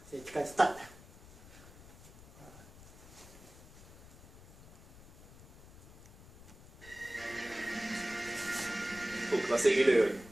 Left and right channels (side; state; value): left; noise; rumble, 20 dB below the sound